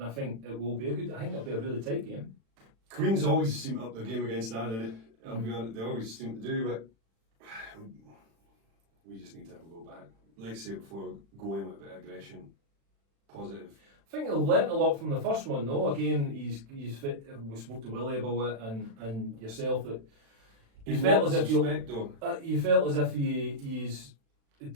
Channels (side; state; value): left; late; 36 ms